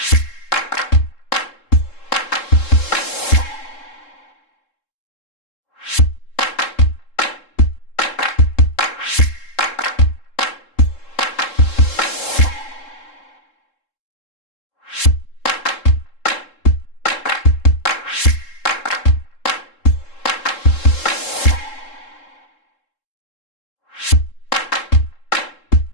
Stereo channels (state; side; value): late; right; 3.7 ms